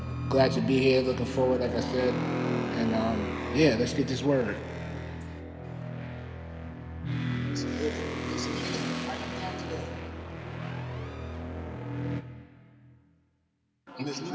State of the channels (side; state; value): both; identical; correlation 1.00